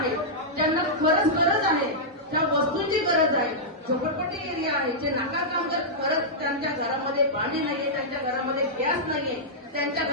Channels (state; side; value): normal; both; correlation -0.10